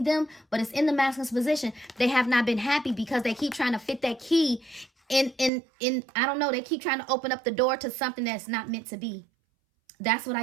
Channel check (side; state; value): left; drops out; at 5.5 s